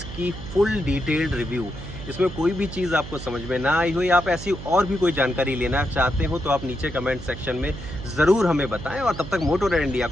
की फुल डिटेल्ड रिव्यू। इसमें कोई भी चीज़ आपको समझ में ना आई हो या आप ऐसी और भी कोई जानकारी लेना चाहते हो तो आप नीचे कमेंट सेक्शन में ज़रूर हमें बताएं। और तब तक मोटोरेड इंडिया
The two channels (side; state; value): right; noise; hum, 11 dB below the sound